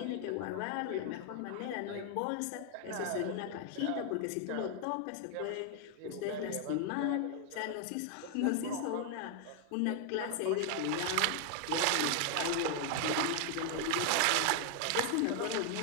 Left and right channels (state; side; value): different; both; correlation 0.00